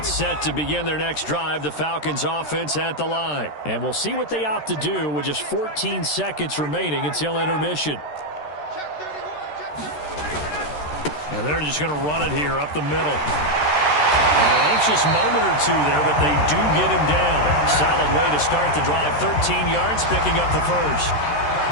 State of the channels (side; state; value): right; late; 13 ms